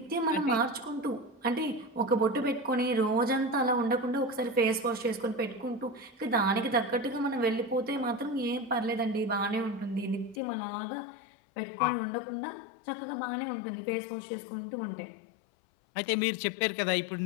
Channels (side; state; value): right; drops out; at 10.4 s